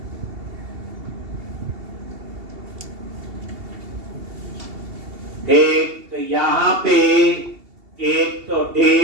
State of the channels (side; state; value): left; late; 2.7 ms